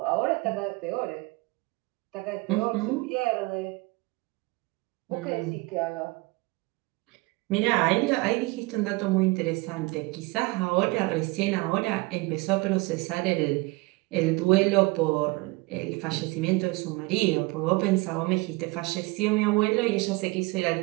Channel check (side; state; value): left; quieter; 23.7 dB